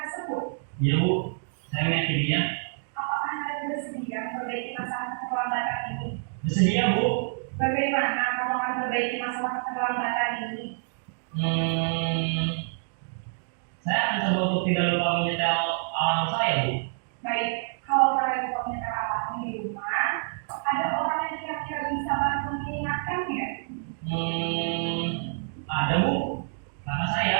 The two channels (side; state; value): left; silent; digital silence